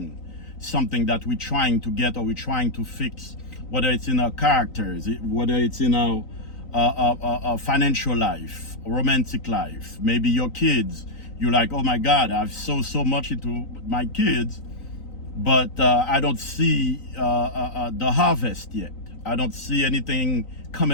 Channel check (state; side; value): late; right; 3.9 ms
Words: something that we're trying to get or we're trying to fix, whether it's in our characters, whether it's in our financial life, romantic life, maybe your kids. You're like, oh my God, I've sowed so much into my kids, but I don't see the harvest yet. I don't see anything